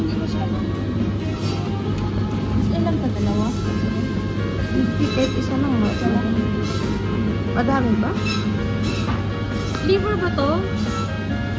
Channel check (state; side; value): identical; both; correlation 1.00